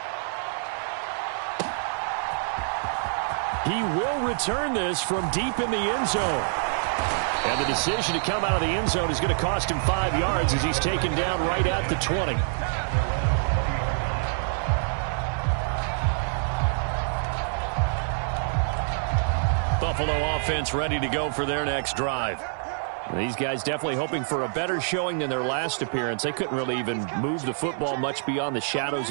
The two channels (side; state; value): left; silent; digital silence